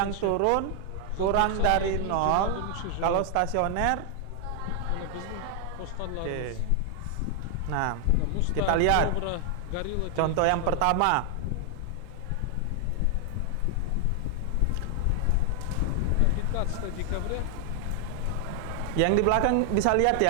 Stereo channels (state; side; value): different; both; correlation 0.00